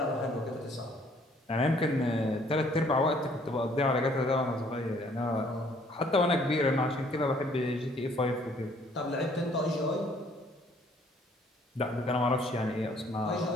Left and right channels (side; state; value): both; normal; correlation 0.61